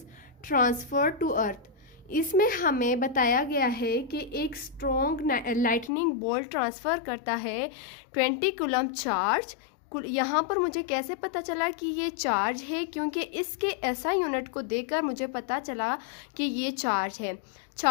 transferred to earth. इसमें हमें बताया गया है कि एक स्ट्रॉन्ग लाइटनिंग बोल्ट ट्रांसफ़र करता है 20 कूलम चार्ज। यहाँ पर मुझे कैसे पता चला कि ये चार्ज है, क्योंकि इसके एसआई यूनिट को देखकर मुझे पता चला कि ये चार्ज है।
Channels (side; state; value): right; drops out; at 5.9 s